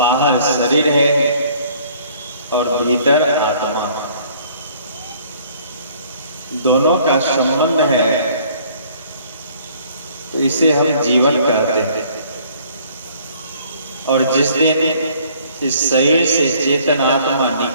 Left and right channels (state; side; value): inverted; both; correlation -0.57